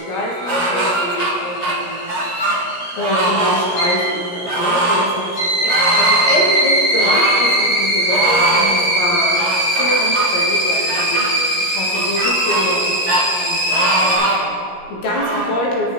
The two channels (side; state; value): right; late; 17 ms